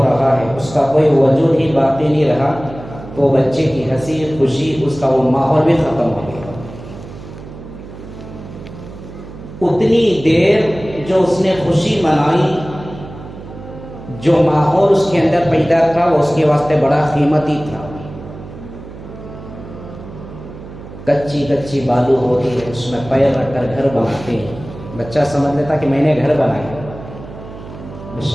رہا ہے، اس کا کوئی وجود ہی باقی نہیں رہا، تو بچے کی ہنسی خوشی، اس کا وہ ماحول بھی ختم ہو گیا. اتنی دیر جو اس نے خوشی منائی، جو ماحول اس کے اندر پیدا تھا وہ اس کے واسطے بڑا قیمتی تھا۔ کچی کچی بالو ہوتی ہے، اس میں پیر رکھ کر گھر بناتے ہیں۔ بچہ سمجھ لیتا کہ میں نے گھر بنایا۔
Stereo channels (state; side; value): noise; right; hum, 14 dB below the sound